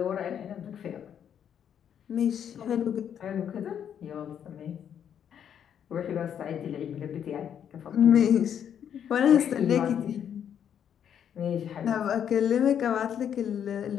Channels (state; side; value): quieter; right; 8.9 dB